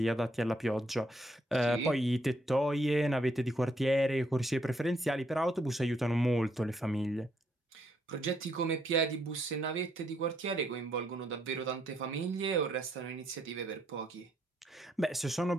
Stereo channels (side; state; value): both; normal; correlation 0.73